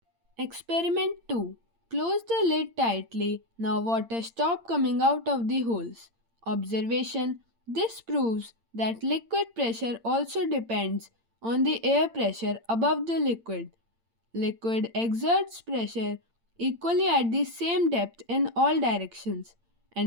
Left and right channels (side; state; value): left; late; 8.8 ms